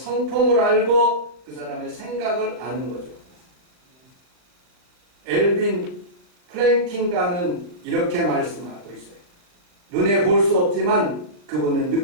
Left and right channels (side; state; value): left; late; 39 ms